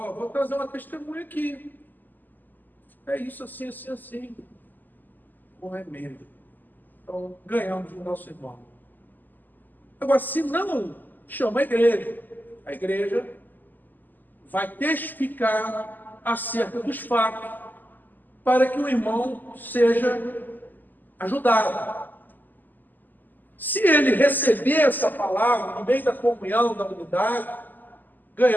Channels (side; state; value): right; late; 0.087 ms